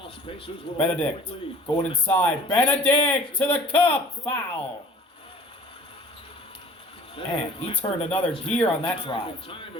Pacers will Benedict lead. going inside. Benedict to the cup, foul. And he turned another gear on that drive. Time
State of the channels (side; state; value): both; normal; correlation 0.49